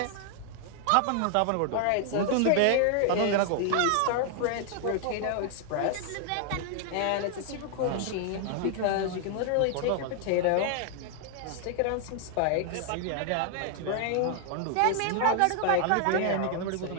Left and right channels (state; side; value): different; both; correlation 0.00